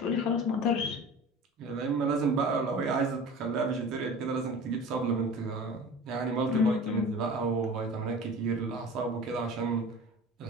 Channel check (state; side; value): normal; both; correlation 0.37